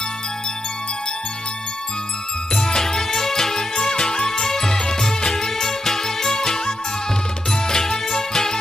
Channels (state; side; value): normal; both; correlation 0.85